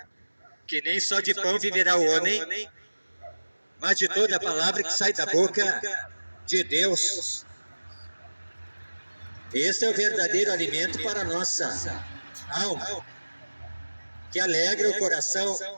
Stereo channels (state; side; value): inverted; both; correlation -1.00